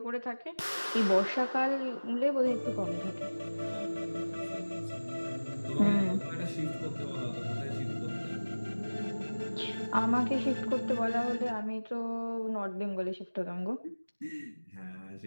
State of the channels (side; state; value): both; inverted; correlation -1.00